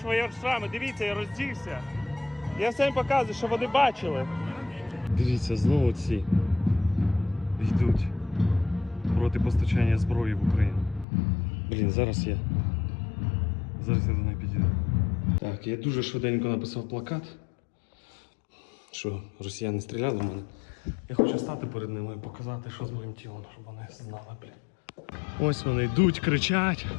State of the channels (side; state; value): right; drops out; at 11.1 s